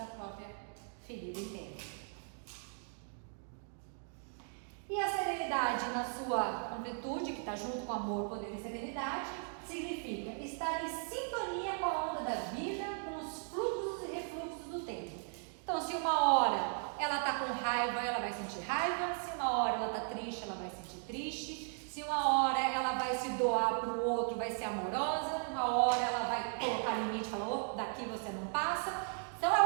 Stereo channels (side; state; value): left; silent; 53 dB below the other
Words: própria ferida interna. E a serenidade na sua completude, que está junto com amor, poder e serenidade, significa estar em sintonia com a onda da vida, com os fluxos e refluxos do tempo. Então, se uma hora ela está com raiva, ela vai sentir raiva. Se uma hora ela está triste, ela vai sentir triste. Se uma hora ela vai se doar para o outro, vai ser amorosa. Uma hora ela vai colocar limite e falar, oh, daqui você não passa. Então,